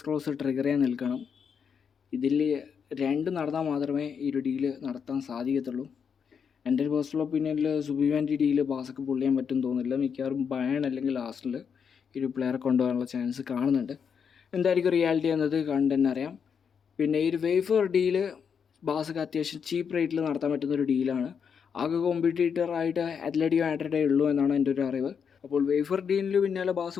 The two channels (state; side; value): quieter; right; 6.8 dB